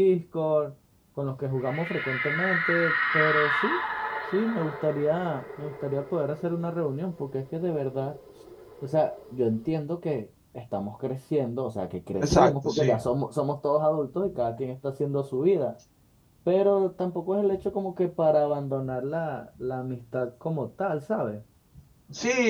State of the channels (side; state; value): both; identical; correlation 1.00